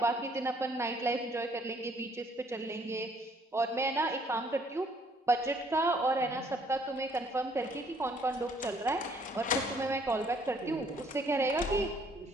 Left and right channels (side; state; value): both; normal; correlation 0.63